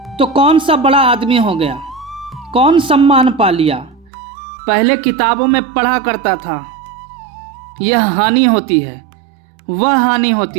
तो कौन सा बड़ा आदमी हो गया, कौन सम्मान पा लिया। पहले किताबों में पढ़ा करता था, यह हानि होती है, वह हानि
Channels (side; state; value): left; drops out; at 4.1 s